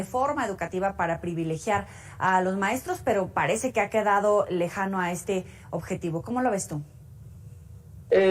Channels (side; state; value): both; identical; correlation 1.00